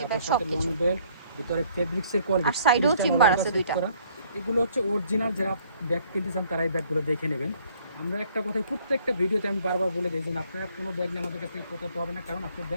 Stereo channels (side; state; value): both; inverted; correlation -0.62